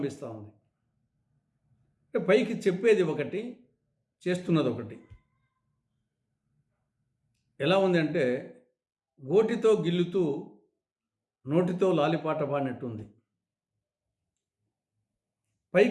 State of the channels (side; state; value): both; identical; correlation 1.00